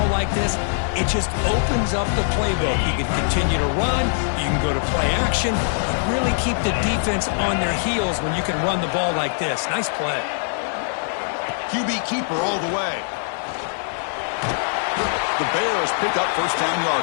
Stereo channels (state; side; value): silent; right; digital silence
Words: like this, it just opens up the playbook. You can continue to run, you can go to play action, and really keep the defense on their heels when you can run the ball like this. Nice play. QB keeper all the way. The Bears pick up first down